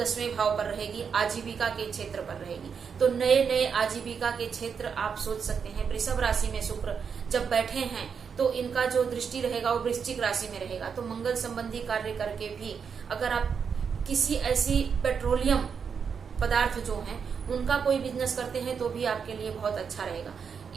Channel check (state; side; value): quieter; left; 6.4 dB